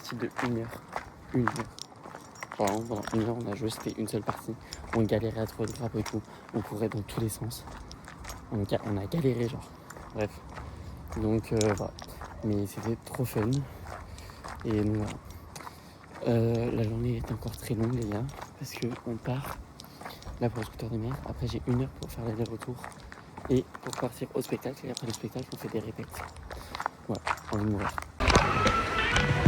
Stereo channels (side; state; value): both; identical; correlation 1.00